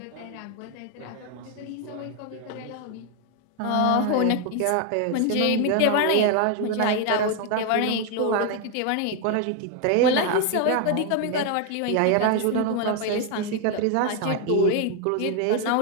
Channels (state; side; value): different; both; correlation 0.01